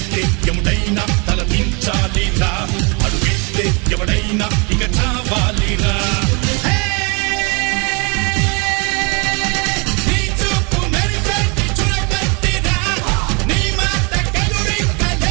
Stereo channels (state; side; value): quieter; left; 31.7 dB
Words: ఎవడైనా తల దించాలిరా అడుగేస్తే ఎవడైనా ఇక చావాలిరా